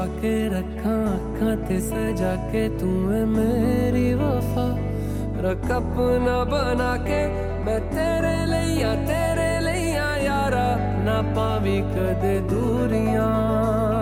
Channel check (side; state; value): both; identical; correlation 1.00